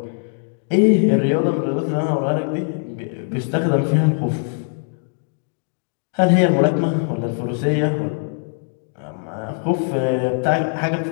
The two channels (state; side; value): silent; right; digital silence